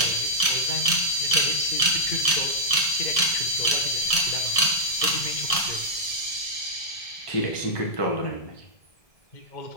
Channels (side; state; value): right; late; 1.7 ms